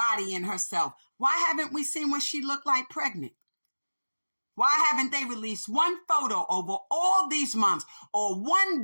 and herself. Why haven't we seen what she looked like pregnant? Why haven't they released one photo over all these months or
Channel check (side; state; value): both; inverted; correlation -1.00